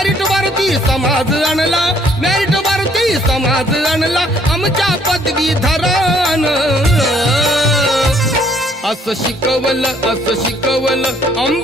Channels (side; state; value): both; normal; correlation 0.64